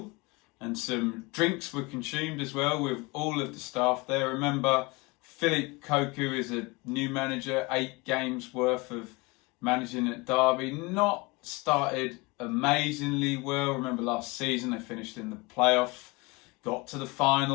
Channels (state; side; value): quieter; right; 25.0 dB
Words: and some drinks were consumed as well with all of the staff there. Remember, Keogh is a new manager, 8 games worth of managing at Derby. Not started amazingly well. Remember last season they finished in the playoff, got to the